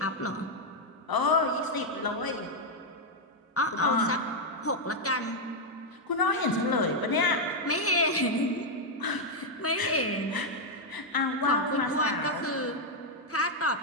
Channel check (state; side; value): normal; both; correlation 0.00